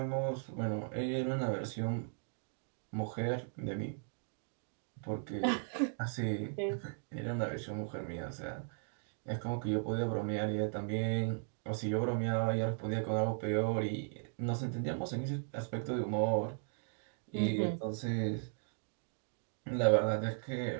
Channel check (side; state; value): left; silent; digital silence